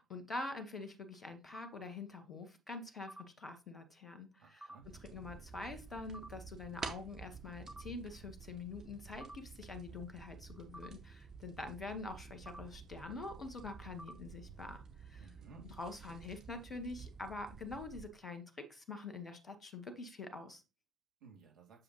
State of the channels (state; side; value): normal; both; correlation 0.53